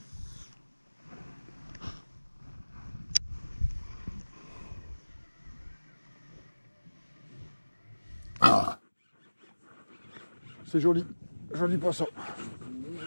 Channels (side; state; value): both; inverted; correlation -1.00